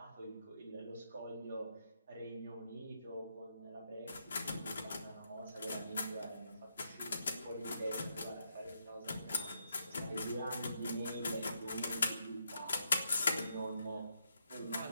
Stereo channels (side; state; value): both; inverted; correlation -0.79